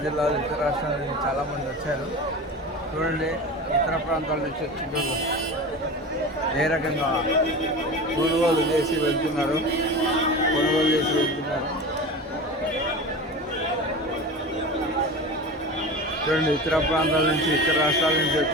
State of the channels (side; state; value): both; normal; correlation 0.31